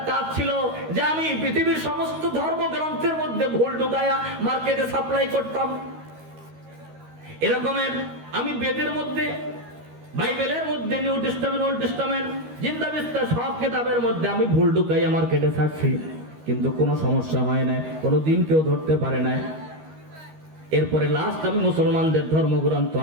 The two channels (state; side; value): late; left; 13 ms